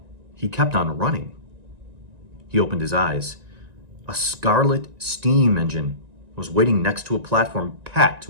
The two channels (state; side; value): late; left; 1.9 ms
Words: He kept on running. He opened his eyes. A scarlet steam engine was waiting next to a platform packed